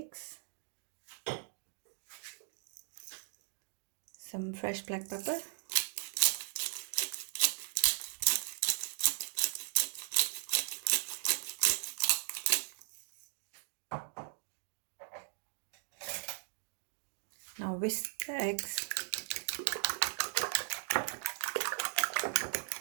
Some fresh black pepper. Now whisk the eggs.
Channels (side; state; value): left; silent; digital silence